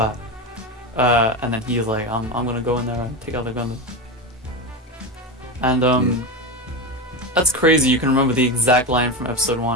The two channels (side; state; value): both; normal; correlation 0.18